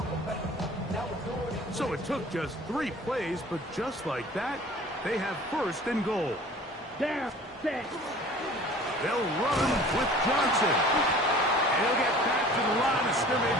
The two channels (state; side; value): normal; both; correlation 0.46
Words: So it took just 3 plays, but just like that, they have 1st and goal. Down, set. They'll run with Johnson. And he'll get back to the line of